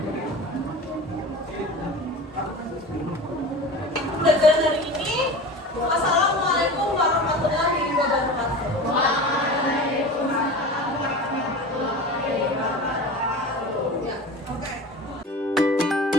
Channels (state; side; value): normal; both; correlation 0.33